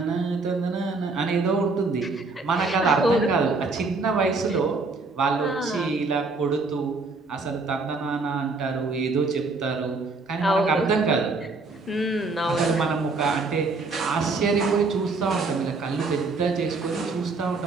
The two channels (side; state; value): left; quieter; 3.8 dB